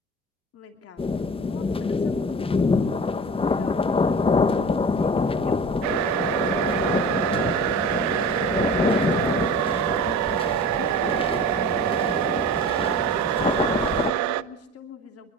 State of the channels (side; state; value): both; normal; correlation 0.37